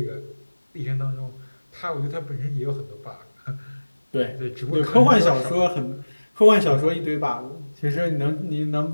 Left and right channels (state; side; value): inverted; both; correlation -1.00